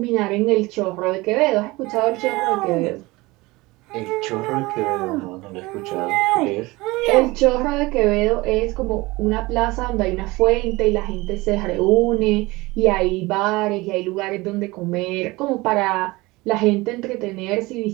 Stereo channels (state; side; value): quieter; left; 21.7 dB